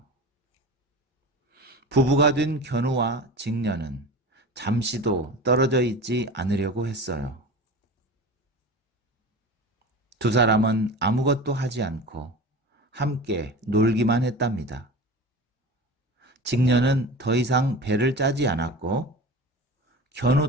부부가 된 견우와 직녀는 잠시도 떨어져 있지 않으려고 했어요. 두 사람은 아무것도 하지 않고 함께 놀기만 했답니다. 직녀는 더 이상 배를 짜지 않았고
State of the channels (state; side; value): normal; both; correlation 0.33